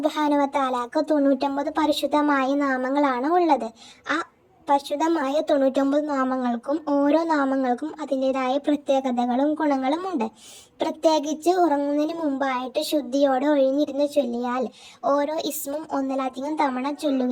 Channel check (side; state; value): both; identical; correlation 1.00